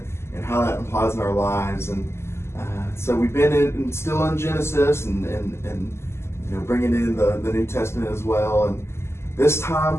and how that applies in our lives. And so we've been still in Genesis and bringing in the New Testament as well. And this time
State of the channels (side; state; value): right; late; 0.12 ms